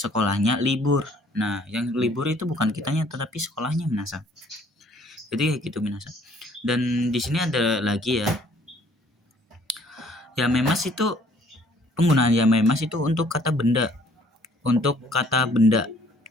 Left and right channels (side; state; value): both; normal; correlation 0.59